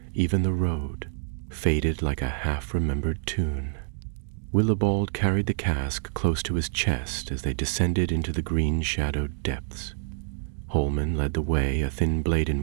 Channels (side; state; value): left; silent; digital silence